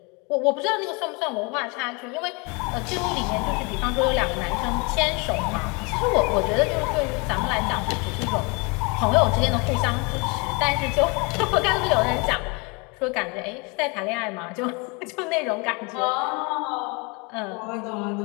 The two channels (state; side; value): quieter; right; 30.1 dB